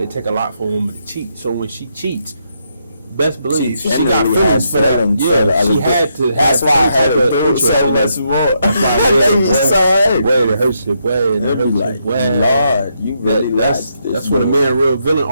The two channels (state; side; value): inverted; both; correlation -0.79